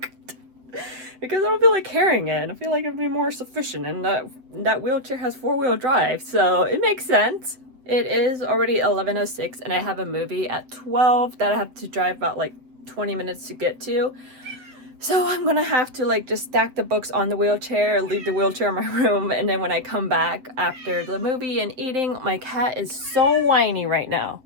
Because I don't feel like carrying it. I feel like it'd be more sufficient, and that wheelchair has 4-wheel drive, so it makes sense. It is already 11:06, and I have a movie at 12 that I have to drive about like 20 minutes to get to. So I'm gonna have to like just stack the books on the wheelchair, leave the wheelchair in my room, and then when I come back after the movie and eating, my cat is so whiny right now.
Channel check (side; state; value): left; late; 8.0 ms